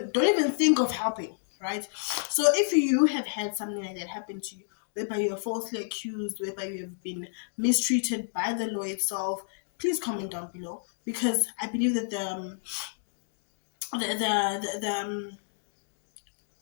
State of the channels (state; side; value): silent; right; digital silence